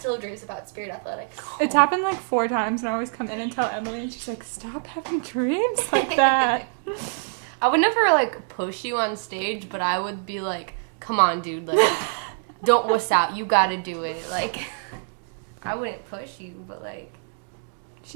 have dreams about spirit athletics. It's happened like 4 times, and I always come in and tell Emily, and she's like, stop having dreams like that. I would never like push you on stage, but I would be like, "Come on, dude! Like, don't wuss out. You gotta do it." Like, I wouldn't push you, but like,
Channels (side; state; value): left; silent; 62 dB below the other